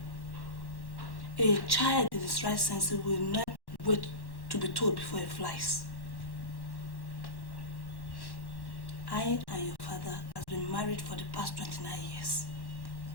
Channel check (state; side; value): late; right; 1.1 ms